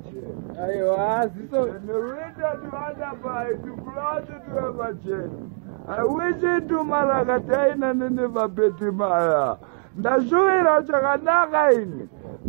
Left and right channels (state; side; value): silent; left; 63 dB below the other